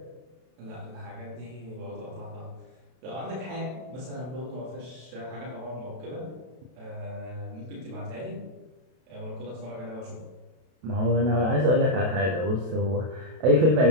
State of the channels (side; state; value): left; late; 32 ms